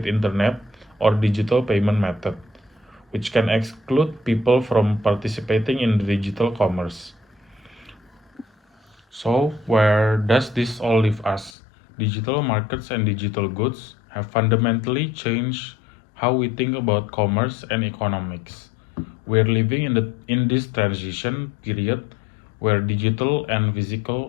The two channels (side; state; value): right; drops out; at 11.5 s